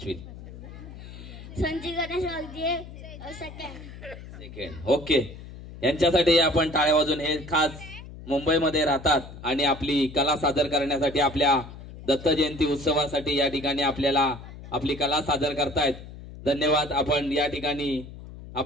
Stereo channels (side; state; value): left; noise; hum, 14 dB below the sound